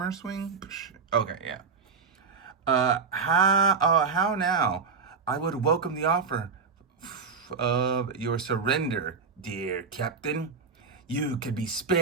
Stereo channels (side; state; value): left; quieter; 5.2 dB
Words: swing? Okay, yeah. How now? I would welcome the offer of your surrender, dear Captain. You could be